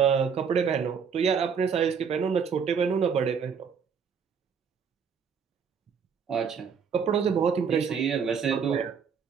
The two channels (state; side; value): quieter; left; 6.6 dB